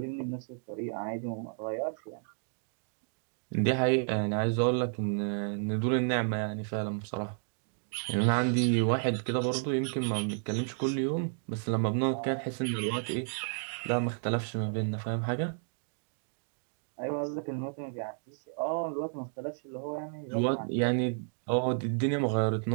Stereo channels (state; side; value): silent; left; digital silence